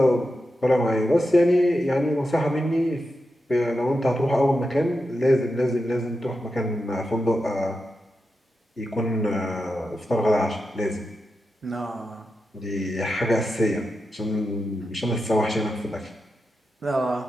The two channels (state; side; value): normal; both; correlation 0.89